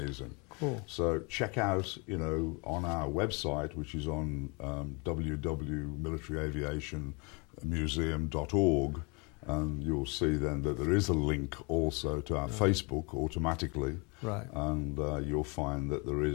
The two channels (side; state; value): right; quieter; 31.2 dB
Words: Cool. So check out, on our website, which is on www.militaryaviationmuseum.org, and you'll see then that there is a link also to our Facebook automatically. Right. And you'll find that there